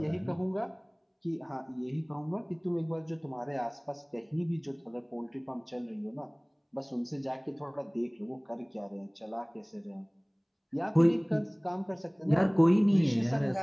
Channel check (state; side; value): identical; both; correlation 1.00